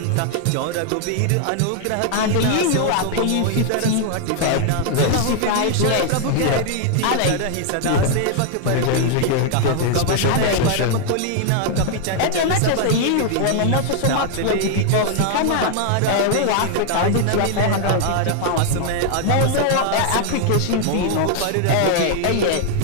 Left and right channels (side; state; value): both; different; correlation 0.00